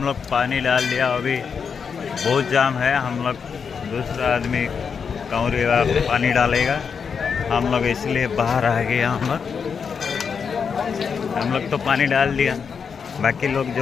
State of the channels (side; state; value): right; quieter; 6.2 dB